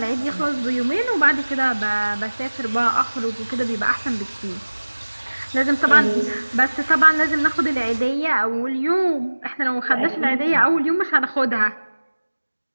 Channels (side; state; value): both; inverted; correlation -1.00